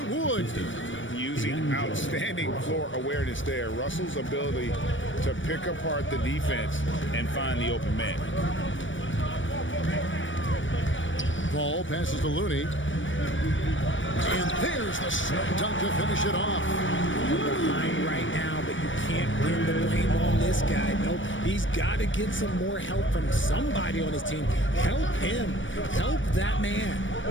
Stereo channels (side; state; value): right; late; 0.56 ms